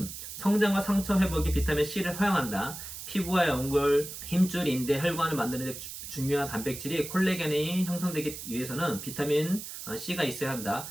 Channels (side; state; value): right; noise; hiss, 10 dB below the sound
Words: 성장과 상처 회복에 비타민 C를 사용한다. 피부와 연골, 힘줄, 인대, 혈관을 만드는 데 중요한 단백질이 콜라겐이 형성되기 위해서는 비타민 C가 있어야 한다.